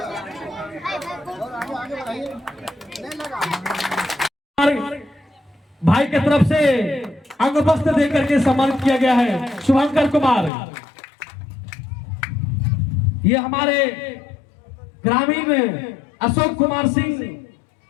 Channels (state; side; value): drops out; right; at 10.5 s